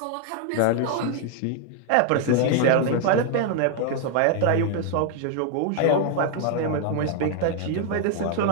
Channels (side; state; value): both; different; correlation 0.00